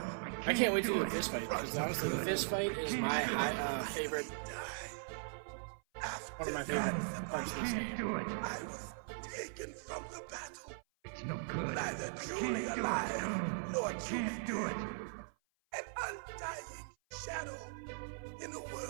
can't wait to do a fist fight, because honestly, the fist fight is my favorite. One of my favorite parts of this game. do it. I was taken from the battle. It's no good. Neither truly alive nor truly do it. An undying shadow in a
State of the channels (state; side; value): silent; left; 52 dB below the other